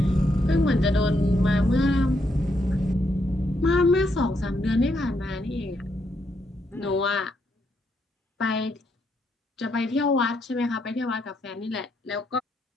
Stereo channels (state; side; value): normal; both; correlation 0.77